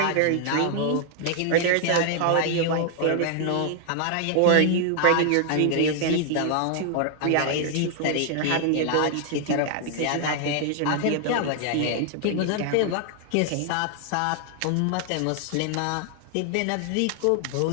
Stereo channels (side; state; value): both; different; correlation 0.00